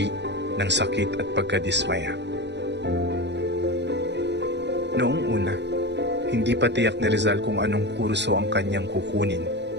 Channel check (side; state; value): left; late; 0.51 ms